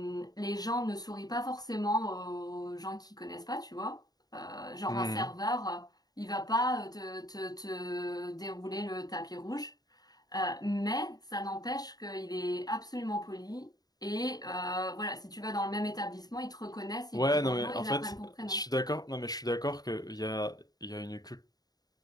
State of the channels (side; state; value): right; late; 0.19 ms